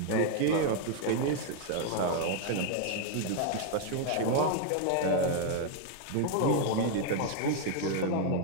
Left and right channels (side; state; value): both; different; correlation 0.00